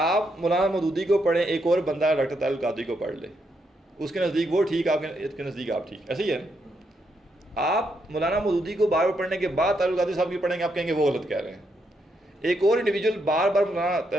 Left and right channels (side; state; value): both; normal; correlation 0.79